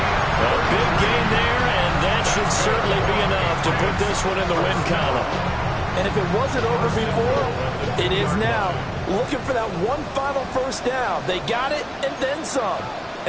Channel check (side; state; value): both; identical; correlation 1.00